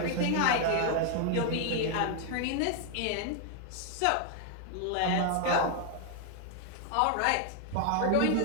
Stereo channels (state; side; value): different; both; correlation 0.00